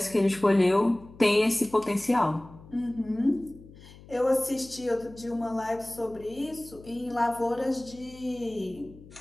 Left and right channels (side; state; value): left; noise; hum, 20 dB below the sound